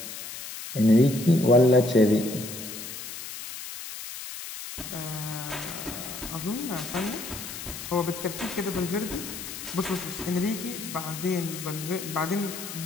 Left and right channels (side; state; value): left; noise; hiss, 9 dB below the sound